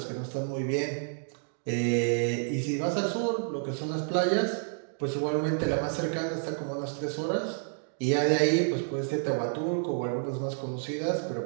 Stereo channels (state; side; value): silent; left; digital silence